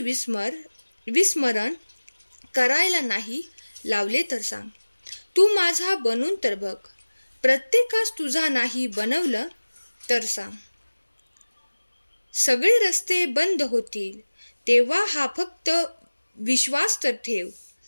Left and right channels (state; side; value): inverted; both; correlation -1.00